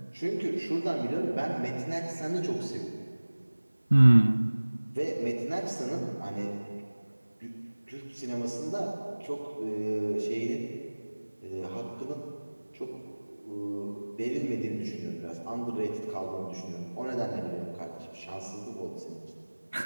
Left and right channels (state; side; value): inverted; both; correlation -1.00